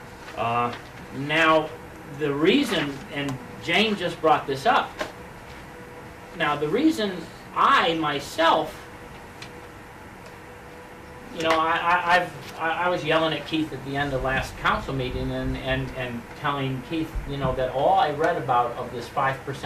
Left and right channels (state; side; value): identical; both; correlation 1.00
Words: Now, the reason, and Jane just brought this up, now the reason I myself, I was yelling at Keith at the end of last council meeting and telling Keith, that all I read about of this